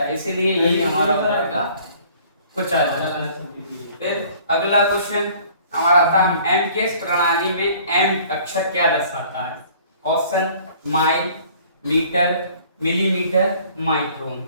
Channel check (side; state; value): both; inverted; correlation -0.54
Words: है, इसीलिए यही हमारा हो जाएगा कुचालक। फिर अगला क्वेश्चन हमारा आता है एम के प्रणाली में एम अक्षर क्या दर्शाता है। Question mile, metre, millimetre, micron.